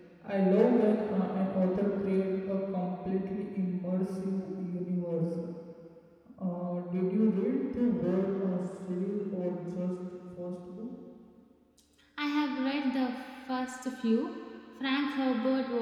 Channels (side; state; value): both; identical; correlation 1.00